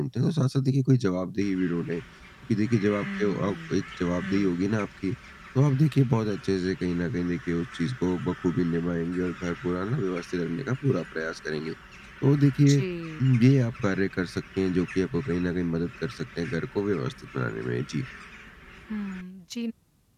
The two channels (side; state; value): both; identical; correlation 1.00